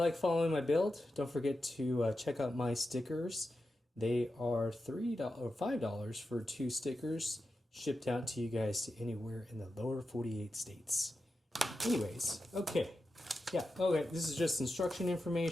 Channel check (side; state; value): both; normal; correlation 0.90